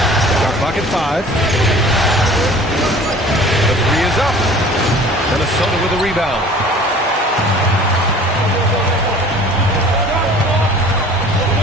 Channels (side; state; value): both; normal; correlation 0.47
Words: Shot clock at 5. The 3 is up. Minnesota with a rebound.